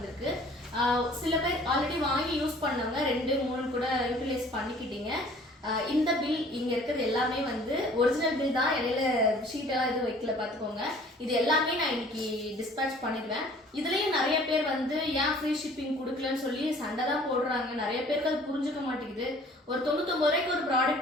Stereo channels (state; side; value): normal; both; correlation 0.52